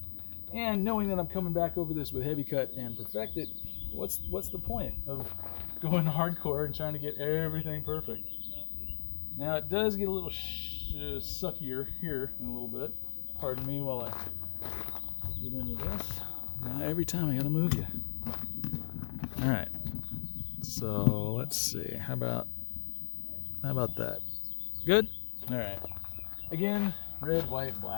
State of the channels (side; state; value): right; silent; digital silence